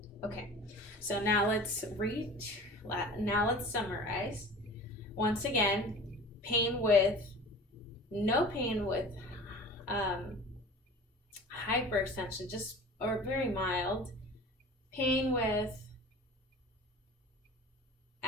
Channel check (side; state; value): both; normal; correlation 0.40